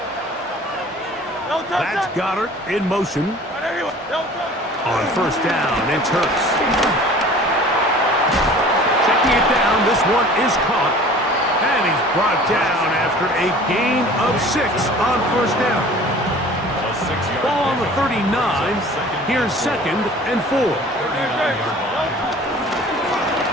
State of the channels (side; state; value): both; normal; correlation 0.46